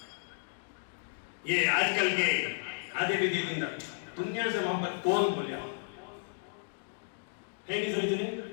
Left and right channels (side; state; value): right; silent; digital silence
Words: یہ آج کل کے آدھے بھی دن دنیا سے محبت کون بولیا ہے؟ نہیں سمجھنے